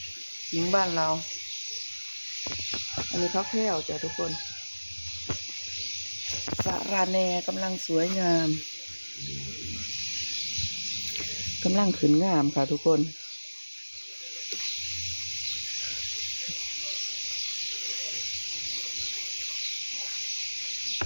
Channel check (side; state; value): both; inverted; correlation -1.00